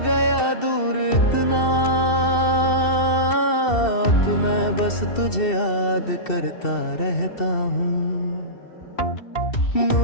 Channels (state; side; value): late; right; 2.7 ms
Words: दूर इतना, तो मैं बस तुझे याद करता रहता हूँ।